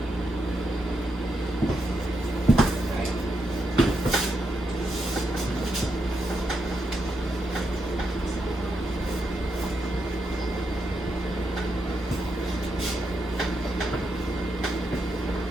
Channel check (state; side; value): normal; both; correlation 0.82